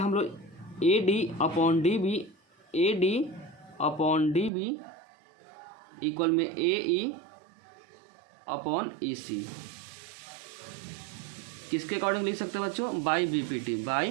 लोग AD अपॉन DB इक्वल में AE अपॉन EC किसके अकॉर्डिंग लिख सकते हैं बच्चों? By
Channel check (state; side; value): drops out; left; at 4.5 s